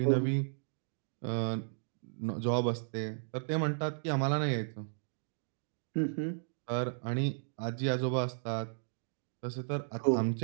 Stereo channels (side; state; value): left; silent; digital silence